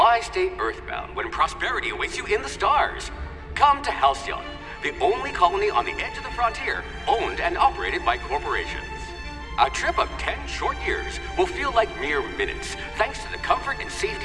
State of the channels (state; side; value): identical; both; correlation 1.00